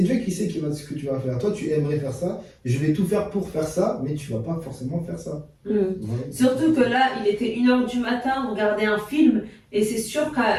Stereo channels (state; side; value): identical; both; correlation 1.00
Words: Dieu qui sait ce que tu vas faire. Toi, tu aimerais faire ça, je vais tout faire pour faire ça, mais tu vas pas forcément faire ça. Voilà. Surtout que là, il était 1h du matin, on regardait un film, et c'est sûr